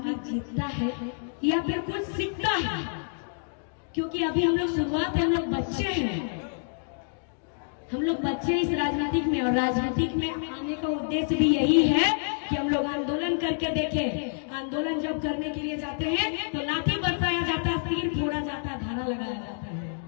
जीतता है या फिर कुछ सीखता है। क्योंकि अभी हम लोग शुरुआत है, हम लोग बच्चे हैं, हम लोग बच्चे इस राजनीतिक में। और राजनीतिक में आने का उद्देश्य भी यही है कि हम लोग आंदोलन करके देखें। आंदोलन जब करने के लिए जाते हैं तो लाठी बरसाया जाता है, तीर फोड़ा जाता है, धारा लगाया जाता है।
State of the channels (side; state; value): right; silent; digital silence